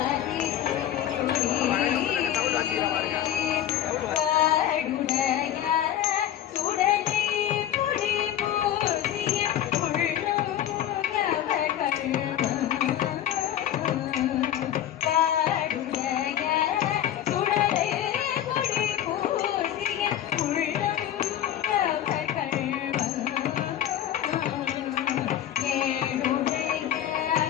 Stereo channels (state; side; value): quieter; right; 11.2 dB